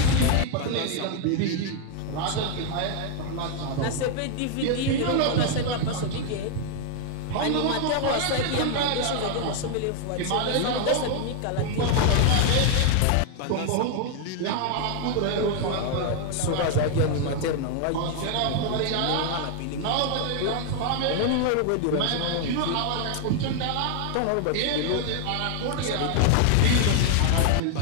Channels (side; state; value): both; different; correlation 0.00